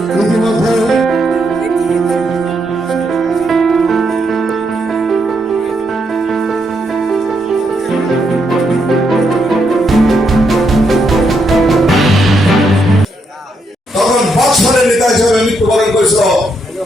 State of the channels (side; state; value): both; normal; correlation 0.78